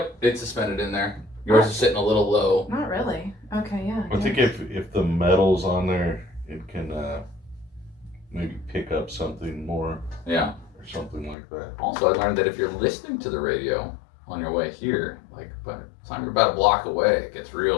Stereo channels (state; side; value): drops out; right; at 11.4 s